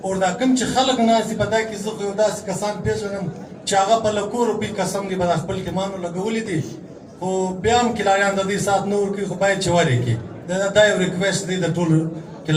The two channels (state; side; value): identical; both; correlation 1.00